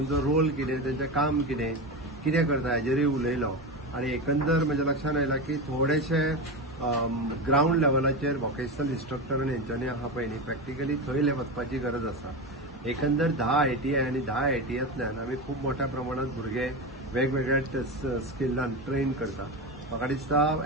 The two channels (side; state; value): both; normal; correlation 0.20